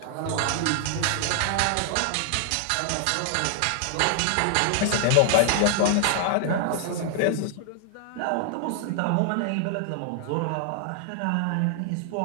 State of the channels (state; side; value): different; both; correlation -0.01